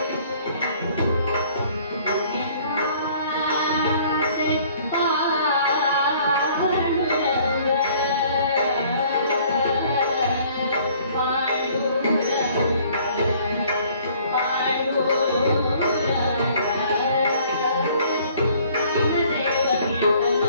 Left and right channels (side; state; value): both; inverted; correlation -0.57